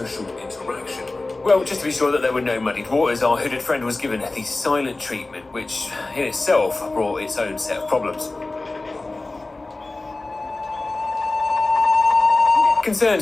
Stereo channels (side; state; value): right; quieter; 3.2 dB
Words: interaction? Well, just to be sure that there were no muddied waters, our hooded friend was given the silent treatment, which in itself brought its own set of problems. Concerned